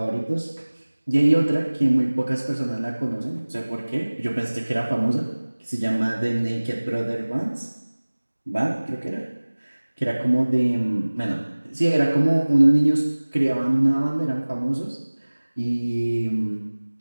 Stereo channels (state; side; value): inverted; both; correlation -1.00